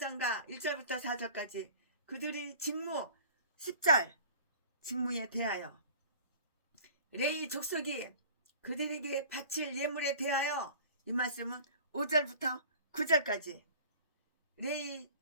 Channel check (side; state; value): both; inverted; correlation -0.44